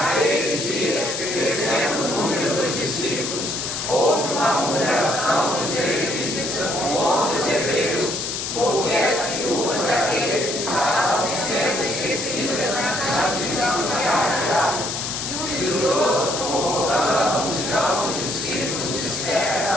dias, crescendo o número dos discípulos, houve uma murmuração dos israelitas contra os hebreus, porque as viúvas daqueles estavam sendo esquecidas na tradição sagrada. E os doze, convocando a multidão dos discípulos,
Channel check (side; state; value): left; noise; hiss, 4 dB below the sound